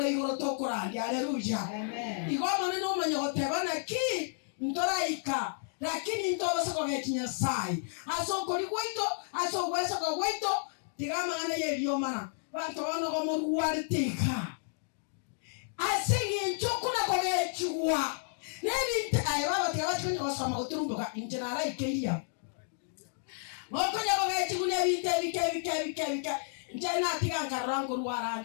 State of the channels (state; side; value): silent; right; digital silence